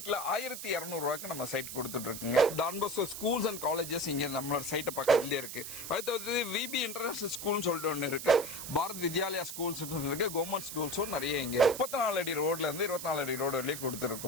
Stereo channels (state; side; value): noise; right; hiss, 8 dB below the sound